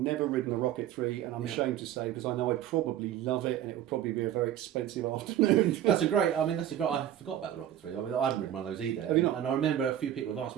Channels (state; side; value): quieter; left; 11.3 dB